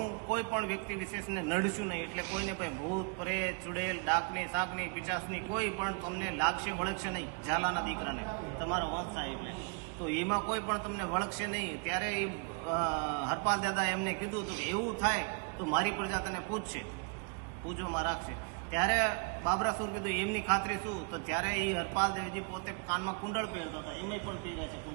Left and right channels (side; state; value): left; quieter; 35.6 dB